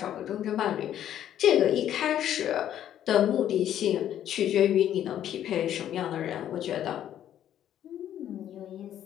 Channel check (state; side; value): quieter; right; 10.9 dB